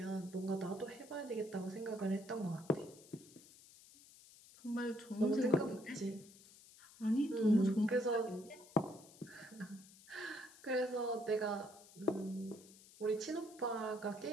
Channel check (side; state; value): left; noise; hiss, 21 dB below the sound